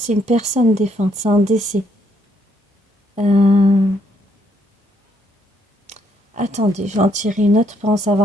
une personne défunte, c'est un décès. Attendez, je vais en tirer une autre pour en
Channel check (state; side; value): normal; both; correlation 0.72